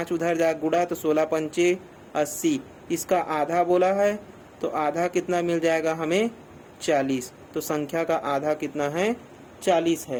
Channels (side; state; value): both; identical; correlation 1.00